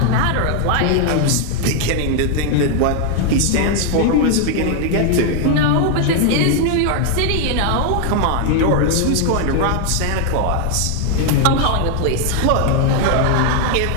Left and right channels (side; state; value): both; different; correlation 0.00